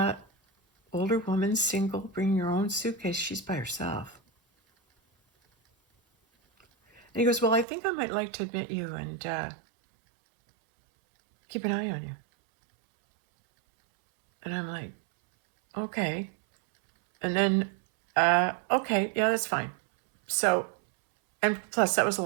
Older woman, single, bring your own suitcase. She's by herself. And he goes, well, I think I might like to admit you and keep an eye on you. And I'm like, okay. And then, okay, yeah, that's fine. So, and plus that was a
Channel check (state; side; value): drops out; left; at 7.7 s